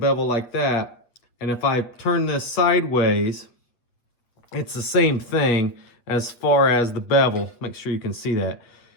like that. And if I turn this sideways, it's the same thing as far as the bevel. Make sure you can see that.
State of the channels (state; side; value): late; right; 8.6 ms